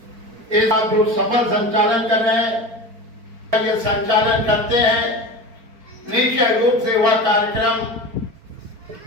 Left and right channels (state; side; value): late; left; 4.4 ms